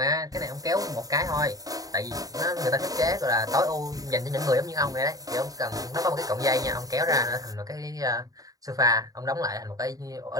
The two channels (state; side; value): late; left; 0.18 ms